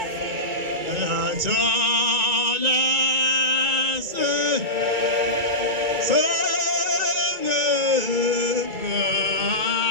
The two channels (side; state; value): left; late; 2.3 ms